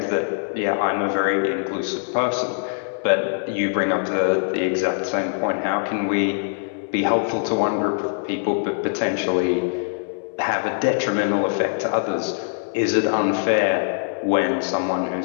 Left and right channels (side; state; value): right; silent; 64 dB below the other